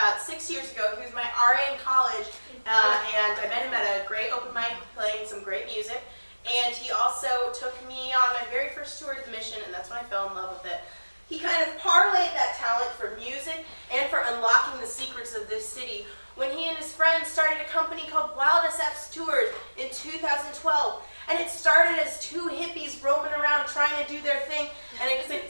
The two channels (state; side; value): inverted; both; correlation -1.00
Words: 6 years ago. He was my RA in college, and I met him at a great open mic playing some great music. And he also took me on my very first tour to the Mission, and that's when I fell in love with it. He kind of parlayed that talent for music and for unlocking the secrets of this city when he and his friends started a company called Wild SF's Tours in 2012. And it started as two hippies roaming around trying to do their thing, and it